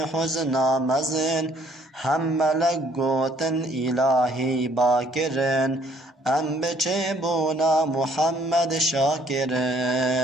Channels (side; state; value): both; normal; correlation 0.63